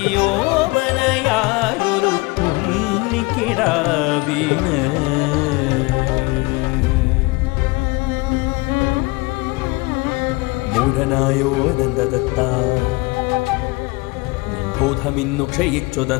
ഉണ്ണിക്കിടാവിന്. മൂഢനായോ അനന്തദത്ത, ബോധമിന്നു ക്ഷയിച്ചു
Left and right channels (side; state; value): right; quieter; 25.2 dB